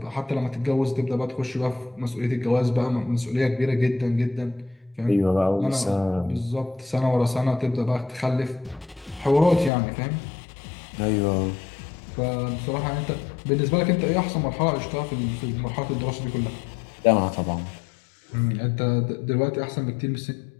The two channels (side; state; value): right; drops out; at 9.7 s